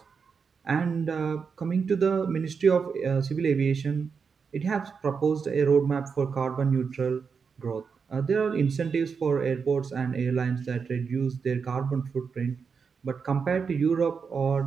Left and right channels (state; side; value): quieter; left; 5.8 dB